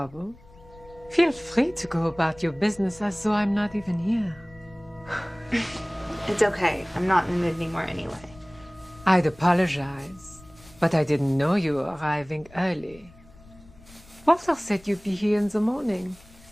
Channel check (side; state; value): left; noise; rumble, 24 dB below the sound